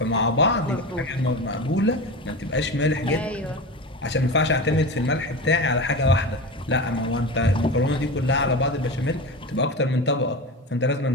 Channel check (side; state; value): both; normal; correlation 0.26